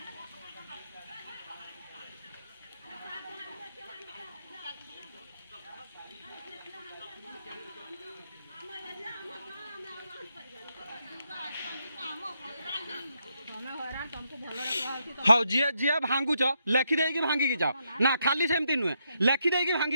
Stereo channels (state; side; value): inverted; both; correlation -0.80